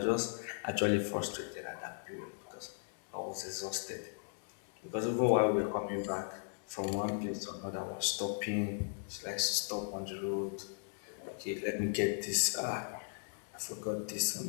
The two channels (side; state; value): right; silent; digital silence